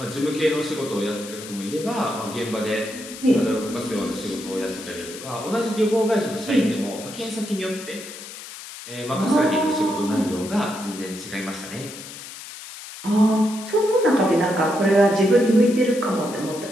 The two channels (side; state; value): left; noise; hiss, 13 dB below the sound